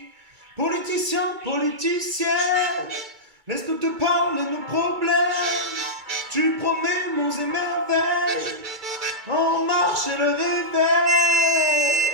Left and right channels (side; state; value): left; late; 2.3 ms